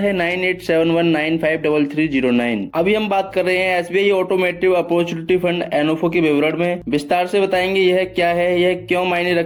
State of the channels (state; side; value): identical; both; correlation 1.00